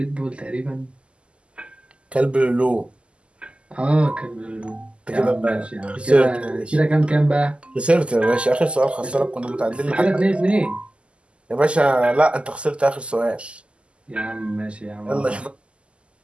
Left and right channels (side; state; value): left; late; 0.053 ms